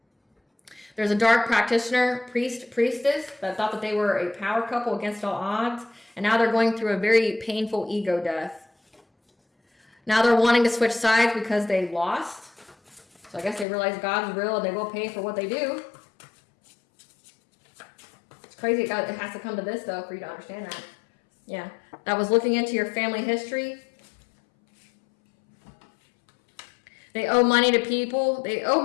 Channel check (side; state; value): right; drops out; at 13.7 s